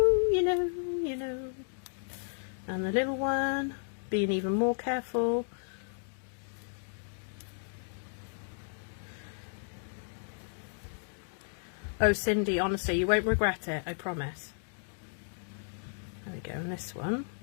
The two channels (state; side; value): silent; right; digital silence